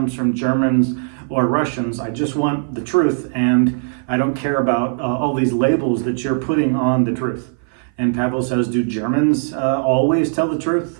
from Germans or Russians. I just want the truth, and I don't care about all these labels that you're putting on the truth. And Pavel says, do Germans always tell the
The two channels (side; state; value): left; silent; 57 dB below the other